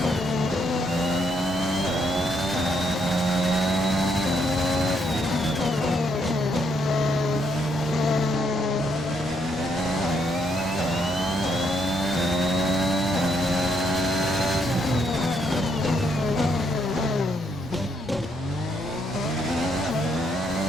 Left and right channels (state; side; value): normal; both; correlation 0.74